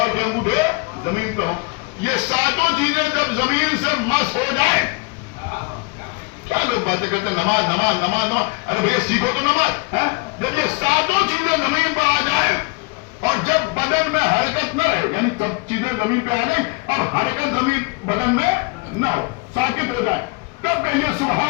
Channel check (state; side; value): quieter; right; 28.7 dB